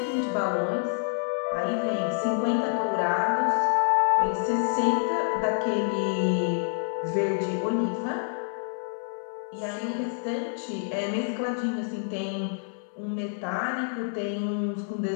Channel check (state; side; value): silent; right; digital silence